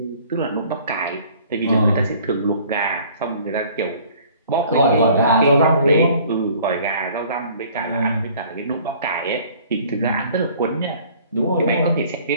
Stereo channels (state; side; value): inverted; both; correlation -0.53